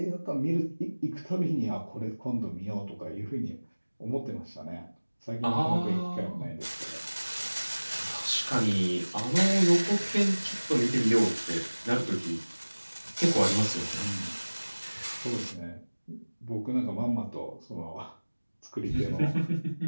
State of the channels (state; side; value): inverted; both; correlation -1.00